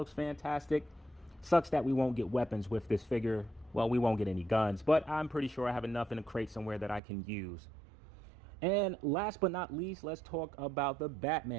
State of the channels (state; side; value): drops out; left; at 7.0 s